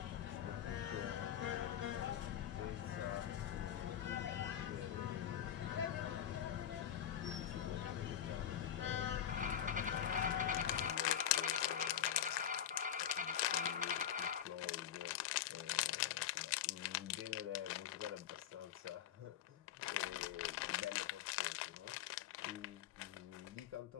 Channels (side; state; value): right; quieter; 10.1 dB